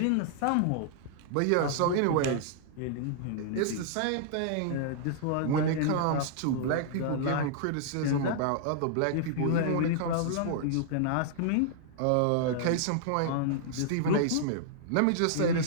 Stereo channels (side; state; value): both; different; correlation -0.01